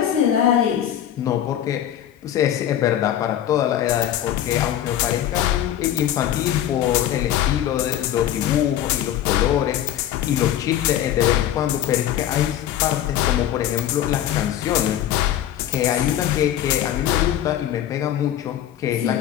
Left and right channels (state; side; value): quieter; right; 11.3 dB